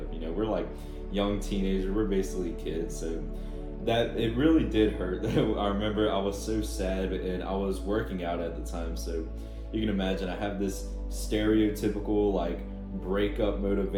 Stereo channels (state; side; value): identical; both; correlation 1.00